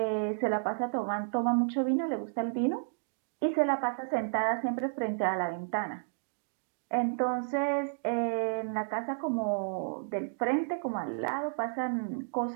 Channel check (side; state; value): left; silent; digital silence